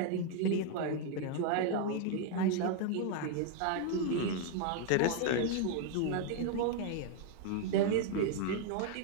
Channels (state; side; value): different; both; correlation 0.01